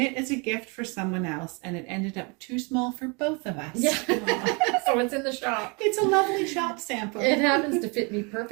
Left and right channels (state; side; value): quieter; left; 31.1 dB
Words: as a gift for someone else and it ended up too small for both of us. Yeah. So it's in the shop. It's a lovely shop sample. It happens to fit me